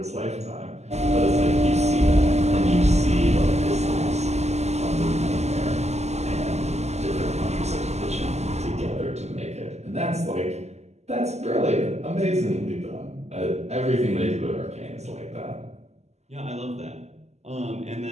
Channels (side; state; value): left; late; 0.32 ms